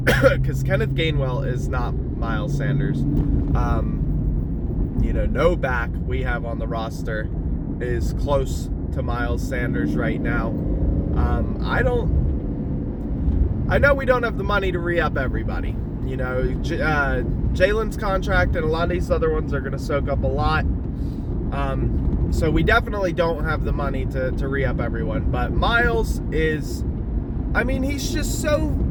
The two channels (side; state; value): both; identical; correlation 1.00